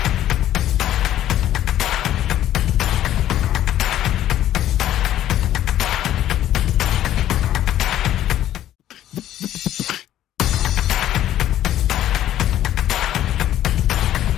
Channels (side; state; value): right; quieter; 12.4 dB